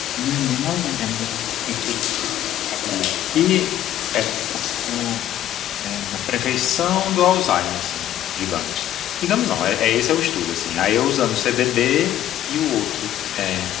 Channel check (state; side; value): quieter; right; 12.4 dB